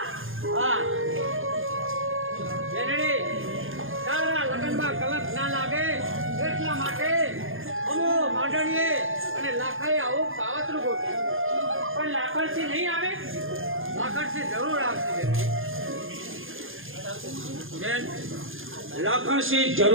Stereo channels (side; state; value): left; late; 0.59 ms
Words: હા જેનડી તારા લગ્નમાં કલંક ના લાગે એટલા માટે અમો માંડણીએ અને લાખાએ આવું કાવતરું ગોઠવ્યું. પણ લાકડથી નહીં આવે? લાખણસિંહ જરૂર આવશે બેન, લાખણસિંહ